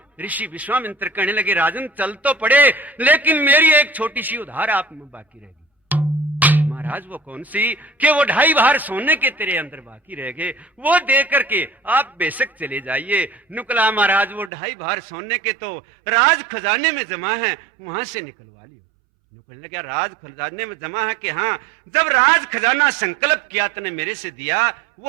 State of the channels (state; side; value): drops out; left; at 14.5 s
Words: ऋषि विश्वामित्र कहने लगे राजन चल तो पड़े, लेकिन मेरी एक छोटी सी उधार आप में बाकी रहेगी। महाराज वो कौन सी, कि वो 2.5 भार सोने के तेरे अंदर बाकी रह गए, वो दे करके आप बेशक चले जाइए। नुकला महाराज वो 2.5 भार सोने के तो राज खजाने में जमा है, वहां से निकलवा लियो। कहने लगा राज खजाने में जमा है कि हाँ, जब राज खजाना संकल्प किया तने मेरे से दिया,